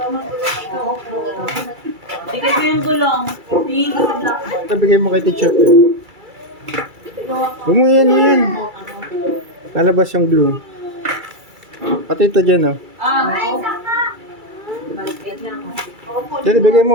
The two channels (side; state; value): left; late; 2.3 ms